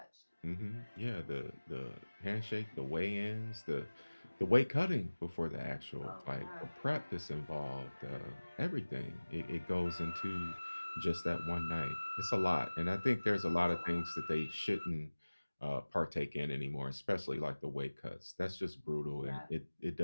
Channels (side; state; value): both; inverted; correlation -1.00